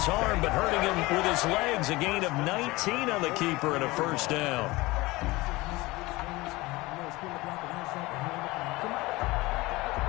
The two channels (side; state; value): right; quieter; 21.1 dB